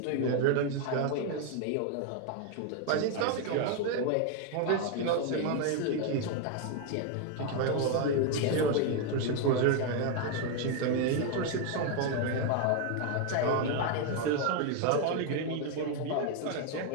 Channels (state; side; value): different; both; correlation 0.01